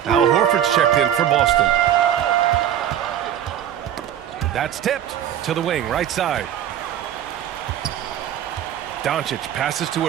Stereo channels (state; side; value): quieter; left; 10.5 dB